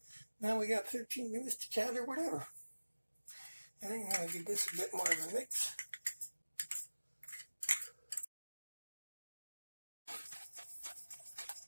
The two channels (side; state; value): both; inverted; correlation -1.00